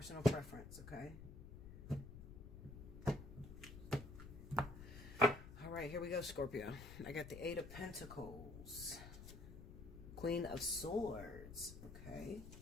preference, okay? All right, here we go, Scorpio. I got the Eight of Pentacles, Queen of Swords, okay,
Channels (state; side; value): noise; left; rumble, 12 dB below the sound